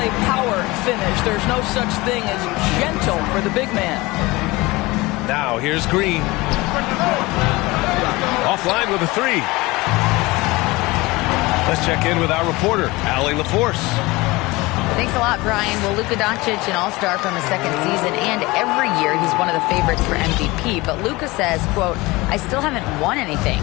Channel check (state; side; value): quieter; right; 22.0 dB